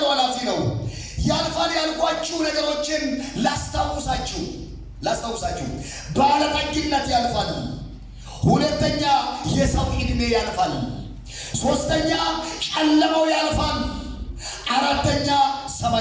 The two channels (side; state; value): both; identical; correlation 1.00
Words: ኃላፊ ነው። ያልፋል ያልኳችሁ ነገሮችን ላስታውሳችሁ። ባለጠግነት ያልፋል። ሁለተኛ የሰው ዕድሜ ያልፋል። ሶስተኛ ጨለማው ያልፋል። አራተኛ